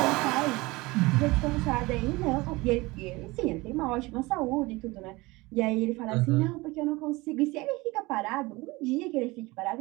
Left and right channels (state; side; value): quieter; left; 22.2 dB